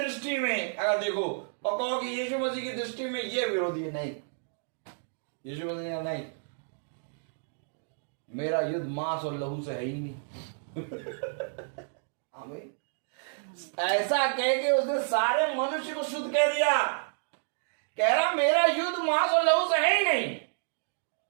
में अगर देखो और कहो कि यीशु मसीह की दृष्टि में ये विरोधी है, नहीं। यीशु मसीह नहीं, मेरा युद्ध मांस और लहू से है ही नहीं। आमीन। ऐसा कह के उसने सारे मनुष्य को शुद्ध कह दिया। कह रहा मेरा युद्ध मांस और लहू से है ही नहीं,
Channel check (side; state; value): left; silent; digital silence